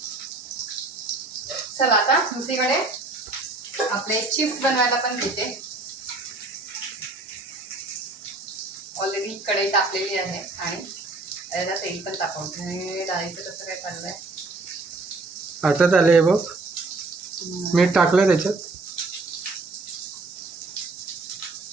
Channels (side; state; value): left; quieter; 3.3 dB